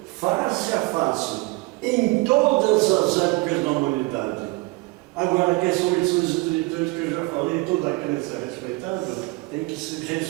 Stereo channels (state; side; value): quieter; left; 24.0 dB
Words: face a face em todas as épocas da humanidade. Agora, que são lições espirituais que eu já falei, toda crença é respeitada, tem que se